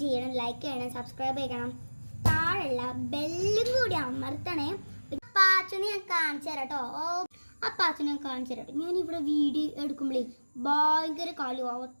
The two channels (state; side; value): inverted; both; correlation -1.00